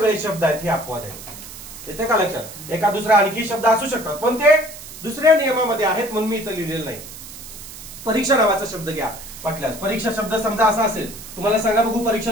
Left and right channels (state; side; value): noise; right; hiss, 14 dB below the sound